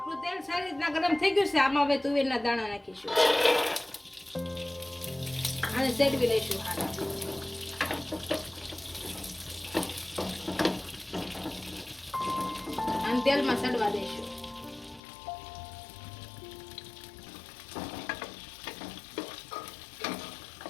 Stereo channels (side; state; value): right; drops out; at 15.0 s